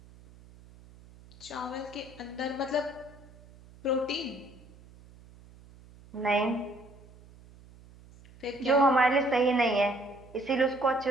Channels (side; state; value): right; noise; hum, 23 dB below the sound